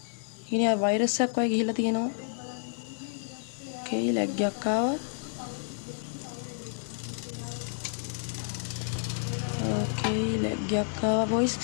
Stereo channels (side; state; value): right; silent; digital silence